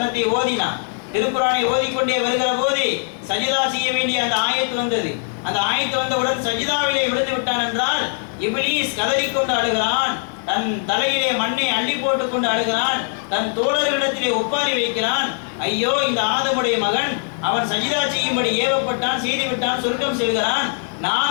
ஓதினான், திருக்குர்ஆனை ஓதிக்கொண்டே வருகிற போது சஜிதா செய்ய வேண்டிய அந்த ஆயத்து வந்தது. அந்த ஆயத்து வந்தவுடன் சஜிதாவிலே விழுந்து விட்டான் என்றால் இப்லீஸ் கதறிக்கொண்டு அழுகிறான், தன் தலையிலே மண்ணை அள்ளி போட்டுக் கொண்டு அழுகிறான், தன் தோழர்களிடத்திலே ஒப்பாரி வைக்கிறான். ஐயோ, இந்த ஆதமுடைய மகன், அவன் சஜிதா செய்யும்படி ஏவப்பட்டான், செய்துவிட்டான், சொர்க்கம் செல்கிறான்.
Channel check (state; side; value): silent; right; 64 dB below the other